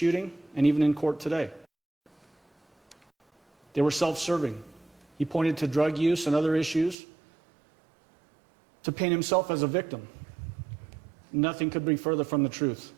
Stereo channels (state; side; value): drops out; left; at 7.0 s